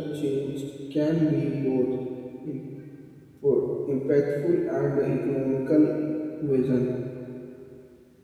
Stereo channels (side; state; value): both; identical; correlation 1.00